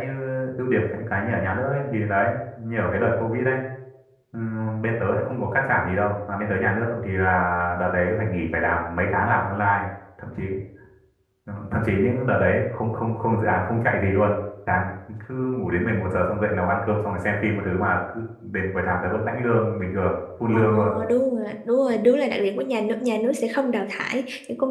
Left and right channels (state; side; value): identical; both; correlation 1.00